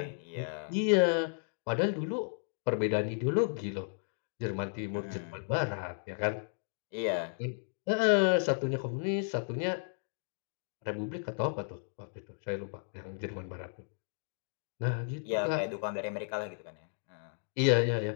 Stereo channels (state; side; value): silent; right; digital silence